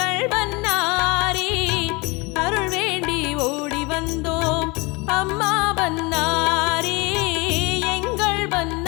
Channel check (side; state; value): right; quieter; 26.3 dB